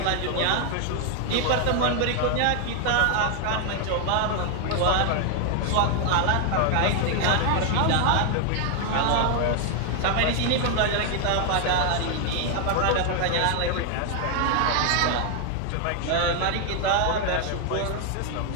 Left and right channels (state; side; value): different; both; correlation 0.00